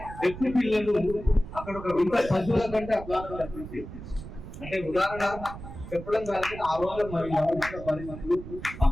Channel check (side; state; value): right; noise; rumble, 12 dB below the sound